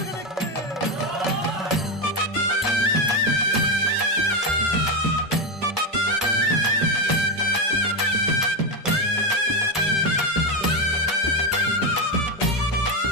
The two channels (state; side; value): normal; both; correlation 0.11